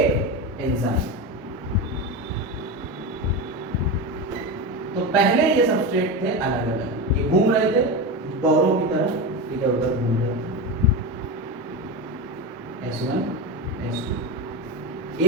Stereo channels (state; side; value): normal; both; correlation 0.20